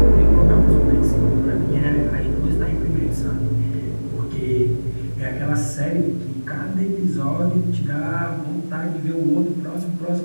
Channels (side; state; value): both; inverted; correlation -1.00